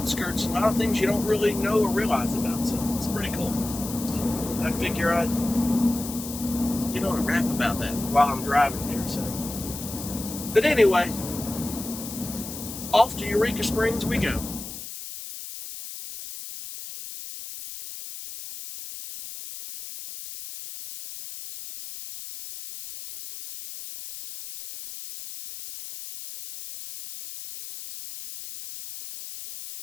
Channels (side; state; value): left; noise; hiss, 10 dB below the sound